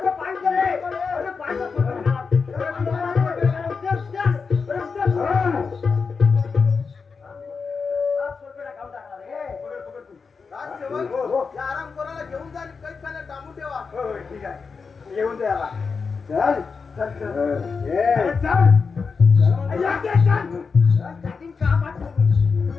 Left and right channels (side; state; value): right; quieter; 5.1 dB